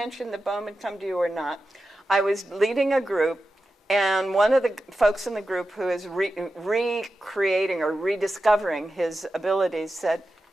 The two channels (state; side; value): normal; both; correlation 0.92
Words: that Bohm had come to you or not. I was leading a group, and one of the folks in the group who is recreating or rediscovering his abilities said,